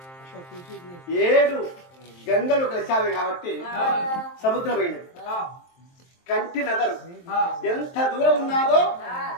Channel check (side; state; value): right; late; 23 ms